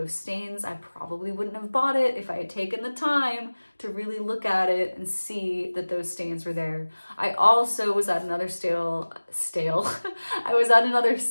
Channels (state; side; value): inverted; both; correlation -1.00